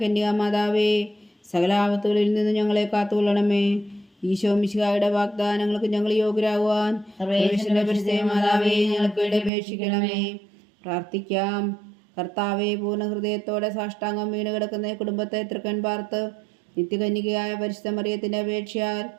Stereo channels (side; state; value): left; drops out; at 9.5 s